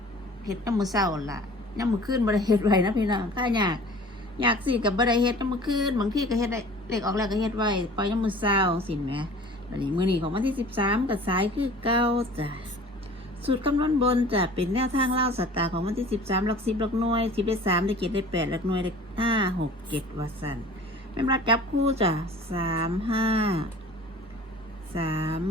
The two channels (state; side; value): normal; both; correlation 0.45